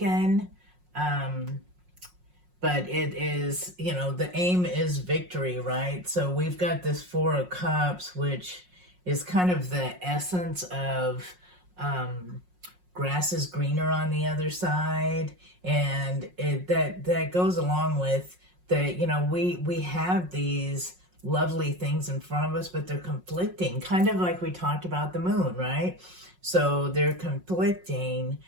but it is, you know, the aim is victory, right? So we've got this Four of Cups, which is kind of the essence of grass is greener on the other side, and that goes along with that. You know, we have these lovely things in front of us, but they're conflicting, kind of like we talked about the moon, right? So they're conflicting.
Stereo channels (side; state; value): left; late; 5.5 ms